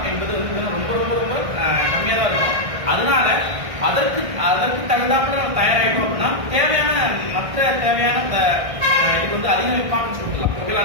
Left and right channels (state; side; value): late; left; 1.6 ms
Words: என்பது வந்து ரொம்ப ரொம்ப ரொம்ப கம்மியாக தான் இருக்கும். அதனால அதற்கு தகுந்தாப்புல நம்ம தயாராகிட்டோம் அப்படின்னா தேவையான மற்ற தேவையான இது வந்து அதிக இம்பார்ட்டன்ஸ் கொடுக்கலாம்.